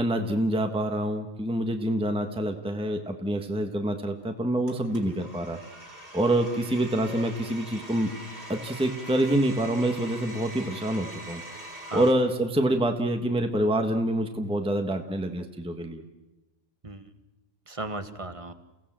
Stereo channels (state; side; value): normal; both; correlation 0.71